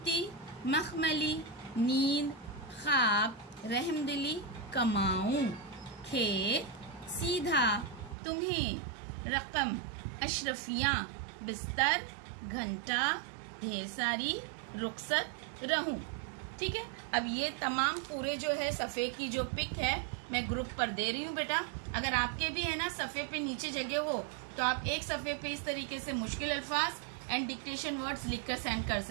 मखमली, नींद, ख्वाब, रहमदिली, कमाऊं। खेत, सीधा, तुम्हें। रकम, अशरफियाँ, बिस्तर, घंटा, ढेर सारी, रुखसत, रहूं। ठीक है। अब ये तमाम पूरे जो है सफ़े की जो पिक है मैं ग्रुप पर दे रही हूँ बेटा। अगर आपके भी है ना सफ़े पे नीचे जगह हो तो आप एक सफ़े पे इस तरीके से मुश्किल अल्फाज एंड डिक्टेशन वर्ड्स लिखकर सेंड कर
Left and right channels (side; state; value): left; drops out; at 8.2 s